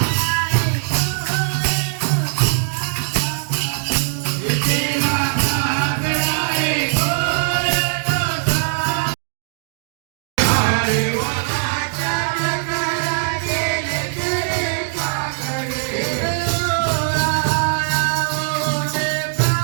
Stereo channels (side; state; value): left; silent; digital silence